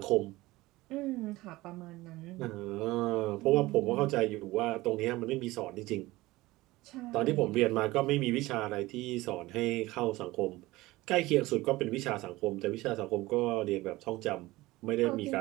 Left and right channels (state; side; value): quieter; left; 19.3 dB